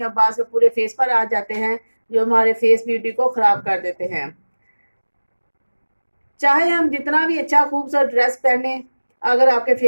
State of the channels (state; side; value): inverted; both; correlation -1.00